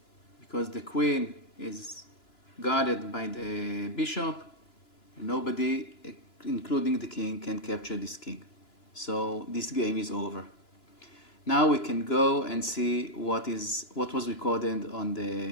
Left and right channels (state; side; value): late; right; 2.9 ms